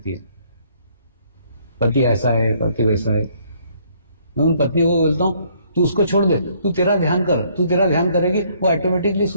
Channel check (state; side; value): inverted; both; correlation -0.65